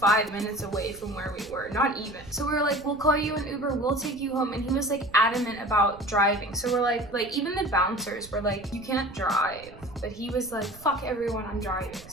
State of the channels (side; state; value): right; noise; rumble, 20 dB below the sound